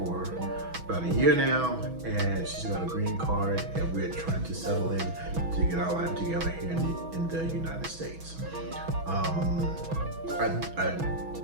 about a year now, and she's got a green card, and we're trying to settle in to get our life together here in the United States. I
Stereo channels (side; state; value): left; late; 6.1 ms